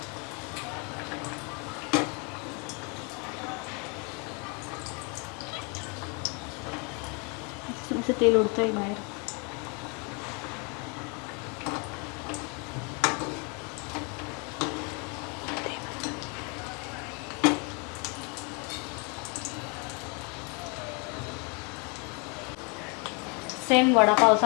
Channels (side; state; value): right; quieter; 33.1 dB